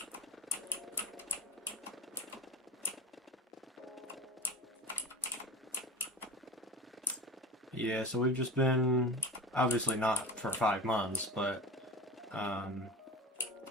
Yeah, so we've just been, obviously not for 5 months, but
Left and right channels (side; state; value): both; normal; correlation 0.33